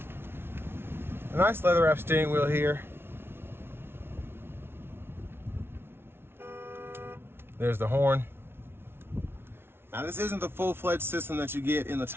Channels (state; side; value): late; left; 0.12 ms